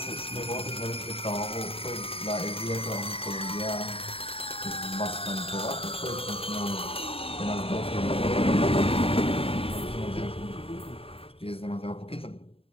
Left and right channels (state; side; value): late; right; 0.27 ms